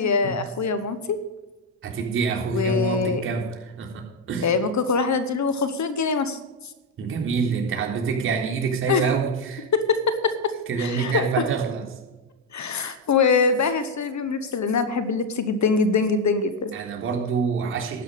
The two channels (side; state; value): both; normal; correlation 0.06